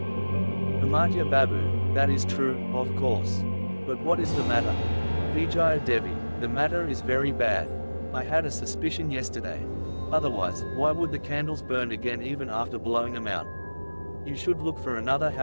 Amartya Babu, "That is true, of course. But what is the matter? Vijaya Devi, the matter is very bad. I had a suspicion yesterday. Otherwise, why would the candles burn again even after blowing them out? You should look for another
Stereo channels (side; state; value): both; inverted; correlation -1.00